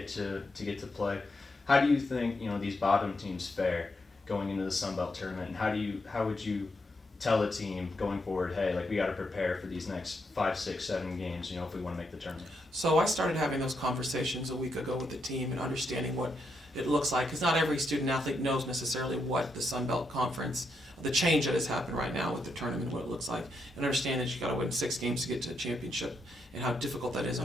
to play. How do you think these bottom teams fare going into the Sun Belt tournament, and how would you tell a team going forward, hey, like we got to prepare for these next 5, 6, 7 games, if we want to make the tournament? So I started having those conversations a week ago with the team and understanding what it looks like, because not every student athlete knows necessarily what the Sun Belt Conference, the change that has happened right now with the tournament, what it looks like, and understand that you got to win 6 games to get to a championship, and how difficult that is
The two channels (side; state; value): both; normal; correlation 0.80